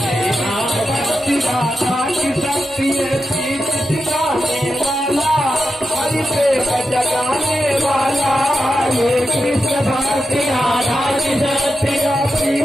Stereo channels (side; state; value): both; normal; correlation 0.89